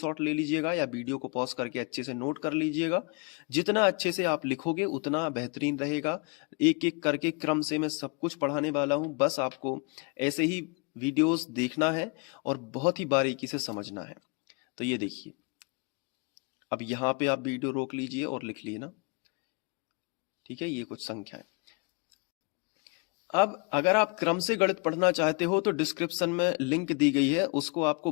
ले लीजिएगा या वीडियो को पॉज करके अच्छे से नोट कर लीजिएगा। जितना अच्छे से आप लिखोगे उतना बेहतरीन रहेगा। एक एक करके क्रम से मैं सब कुछ पढ़ाने वाला हूं, बस आपको ऐसे ही वीडियोस देखना है और बहुत ही बारीकी से समझना है। तो ये देखिए, अब यहाँ पे आप वीडियो रोक लीजिए और लिख लिए ना, ठीक है? ये कुछ संख्याएं। अब अगर आप क्रम से गणित पढ़ना चाहते हो तो डिस्क्रिप्शन में लिंक दी गई है, उसको आपको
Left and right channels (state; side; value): quieter; right; 32.6 dB